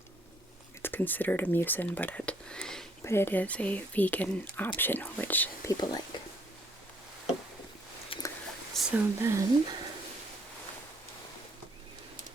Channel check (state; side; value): normal; both; correlation 0.65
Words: It's considered a mucin, but it is a vegan option, which people like. So then,